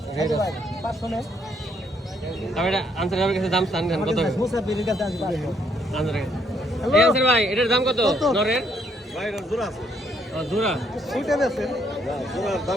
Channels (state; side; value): normal; both; correlation 0.70